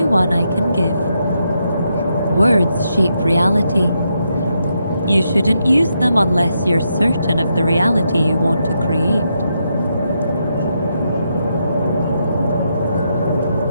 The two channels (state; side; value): inverted; both; correlation -0.81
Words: one I can give. Words shape reality. You shouldn't use them unless you're certain of the reality you want to create.